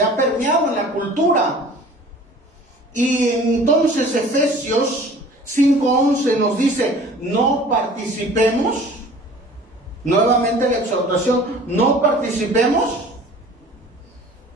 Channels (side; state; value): both; normal; correlation 0.46